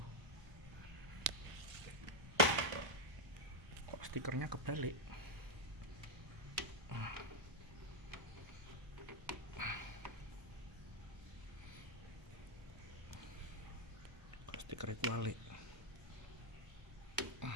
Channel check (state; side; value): late; left; 1.5 ms